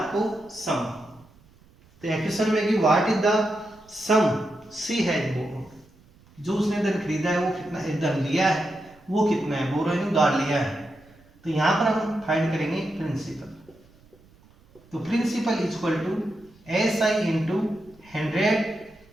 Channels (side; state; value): right; noise; rumble, 28 dB below the sound